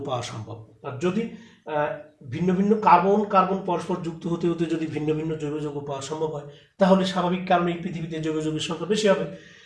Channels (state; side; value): identical; both; correlation 1.00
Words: পাওয়া সম্ভব। আর যদি ভিন্ন ভিন্ন কার্বন পরস্পর যুক্ত হতে হতে যদি ভিন্ন ভিন্ন জৈব যৌগ পাওয়া সম্ভব হয় তাহলে স্বাভাবিক কারণেই পৃথিবীতে জৈব যৌগের সংখ্যা বেশি হবে।